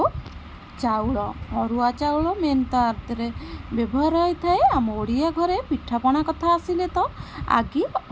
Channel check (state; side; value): identical; both; correlation 1.00